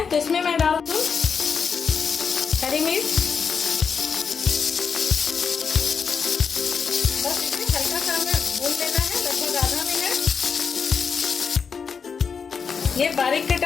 तो इसमें मैं डाल दूँ हरी मिर्च। बस इसे हल्का सा हमें भून लेना है, लगभग आधा मिनट। ये बारीक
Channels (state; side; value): quieter; right; 6.0 dB